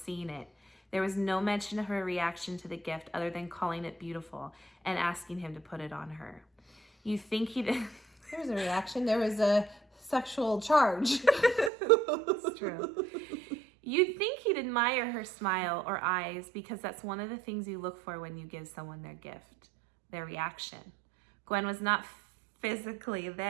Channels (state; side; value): drops out; left; at 11.7 s